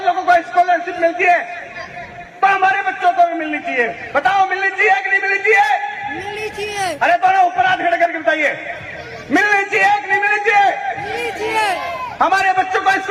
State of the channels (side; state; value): both; identical; correlation 1.00